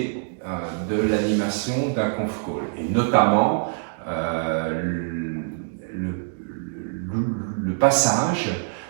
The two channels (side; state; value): left; silent; digital silence